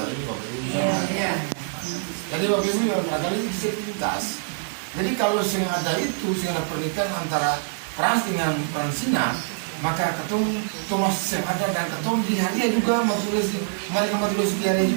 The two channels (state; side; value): silent; left; 62 dB below the other